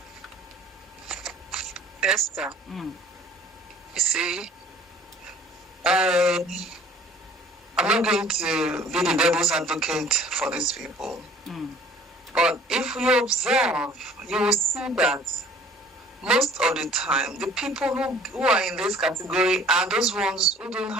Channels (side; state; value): both; normal; correlation 0.52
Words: Esther, you see, I'm not going to be the devil's advocate for these people. But if you observe, you will see that most of the time, the people who are in this category are those ones who don't